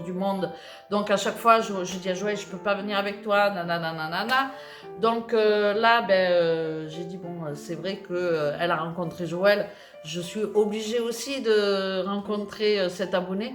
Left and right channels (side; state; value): both; identical; correlation 1.00